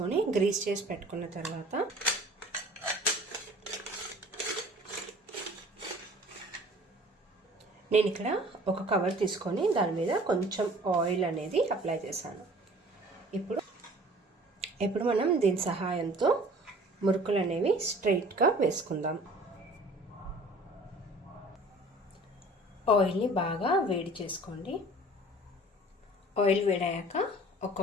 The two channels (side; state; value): both; normal; correlation 0.48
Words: గ్రీస్ చేసి పెట్టుకున్న తర్వాత నేను ఇక్కడ ఒక కవర్ తీసుకొని దాని మీద కొంచెం ఆయిల్ అనేది అప్లై చేశాను. ఇప్పుడు మనం దీని సహాయంతో మురుకులు అనేవి స్ట్రైట్గా వేసుకుందాం. ఆయిల్ని బాగా వేడి చేసుకోండి. ఆయిల్ వేడయ్యాక